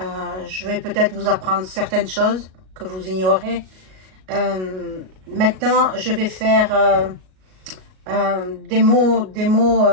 Je vais peut-être vous apprendre certaines choses que vous ignorez. Maintenant, je vais faire des mots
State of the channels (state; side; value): late; left; 38 ms